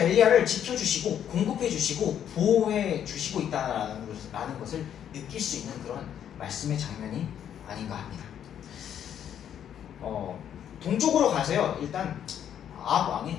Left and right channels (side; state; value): right; quieter; 9.5 dB